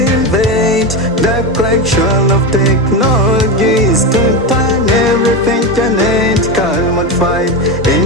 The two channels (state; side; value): normal; both; correlation 0.16